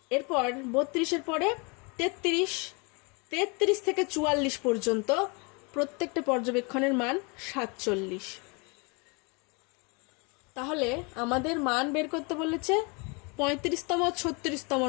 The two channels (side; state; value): right; quieter; 31.1 dB